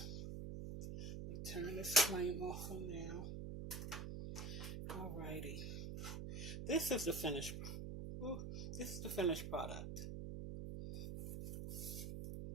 turn this flame off for now. Alrighty, this is the finished. This is the finished product.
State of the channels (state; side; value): noise; right; hum, 5 dB below the sound